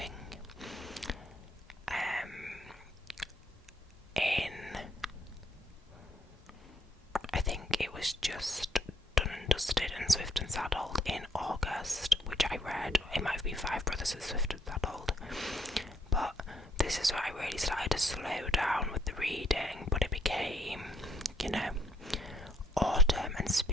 I think it was just Done and Dusted and Swift and Saddled in August, which I read. It might have been Five Brothers and Swift and Saddled, but this is where I really started to slow down with the reading. But it became, autumn and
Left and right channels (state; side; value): normal; both; correlation 0.70